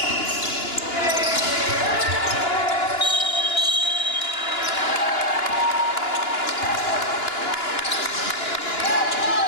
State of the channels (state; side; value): late; right; 2.9 ms